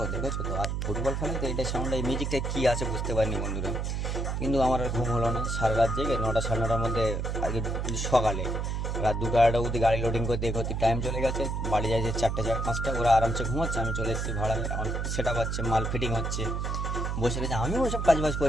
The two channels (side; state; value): right; noise; hum, 1 dB below the sound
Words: দেখেছো তো। আর ফুটবল খেলায় তো এইটা সাউন্ড, এই মিউজিকটা কী আছে বুঝতে পারিনি বন্ধুরা। কিন্তু আমার আর ঘুম হলো না, সারা রাত জেগে 9টা সাড়ে 9টার মধ্যে আগে সকালে রাত 2টা অবধি গাড়ি লোডিং করতে করতে টাইম চলে গেছে। বাড়ি যায় যে 4টে 5টা, ওরা আরামসে ঘুমাচ্ছে, আমি চলে এসেছি ভাড়ায়। আমার সেট আপ হচ্ছে, মাল ফিটিং হচ্ছে, বসে রয়েছে। আমিও ওসব কাজবাজ